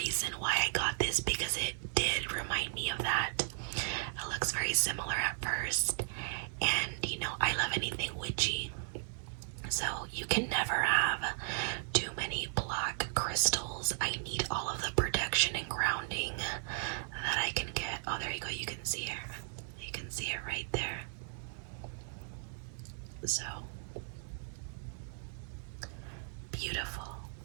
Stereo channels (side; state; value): left; silent; digital silence